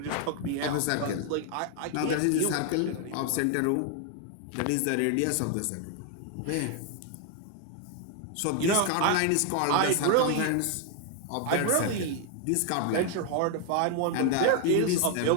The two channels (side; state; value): both; different; correlation 0.00